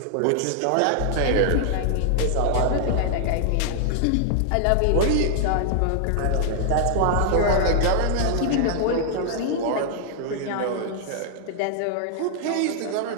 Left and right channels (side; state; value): both; different; correlation -0.01